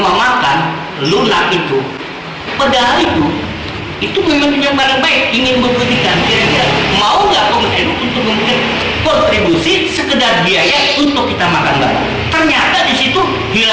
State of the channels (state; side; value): identical; both; correlation 1.00